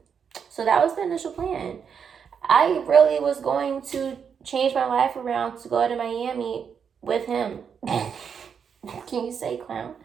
So that was the initial plan. I really was going to change my life around to go to Miami with him. Can you say clown?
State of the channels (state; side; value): quieter; left; 7.0 dB